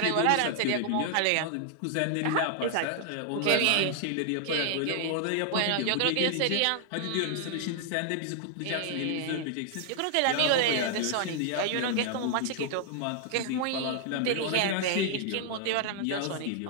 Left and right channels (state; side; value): different; both; correlation 0.00